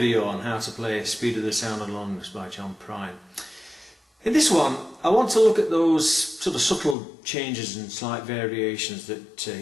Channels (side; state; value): right; drops out; at 7.0 s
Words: on how to play Speed of the Sound and Longness by John Prine. In this one I want to look at those sort of subtle changes and slight variations that